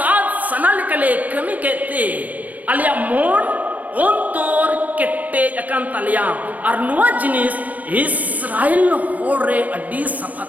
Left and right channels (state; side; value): late; left; 0.077 ms